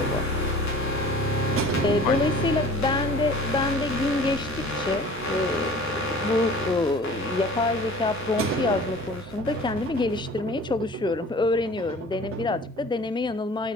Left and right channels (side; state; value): both; normal; correlation 0.45